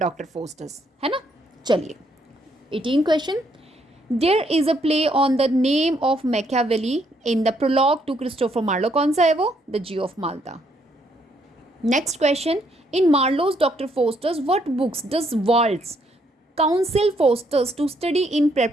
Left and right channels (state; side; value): normal; both; correlation 0.72